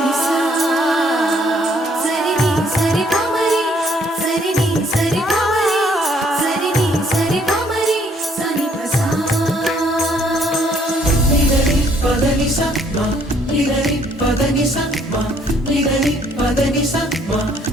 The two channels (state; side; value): normal; both; correlation 0.65